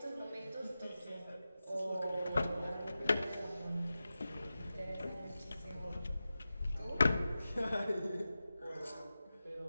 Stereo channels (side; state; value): both; inverted; correlation -0.94